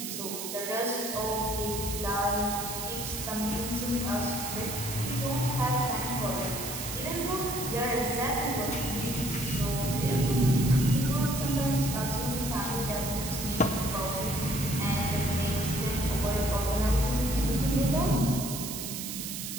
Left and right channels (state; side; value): noise; right; hiss, 6 dB below the sound